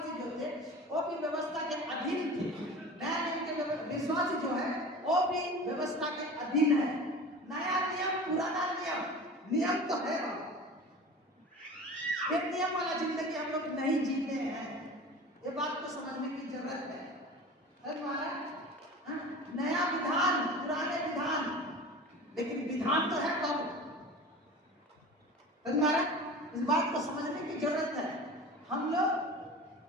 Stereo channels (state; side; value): normal; both; correlation 0.36